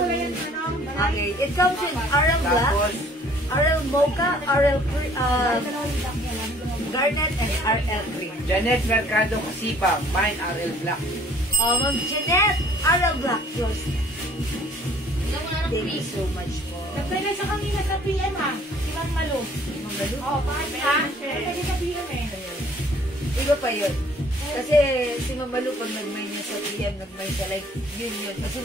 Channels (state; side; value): normal; both; correlation 0.56